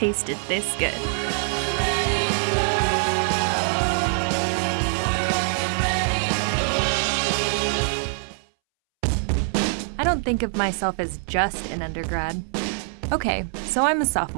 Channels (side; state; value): left; silent; 63 dB below the other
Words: this good. I don't think of myself as just an undergrad. Okay, so I'm a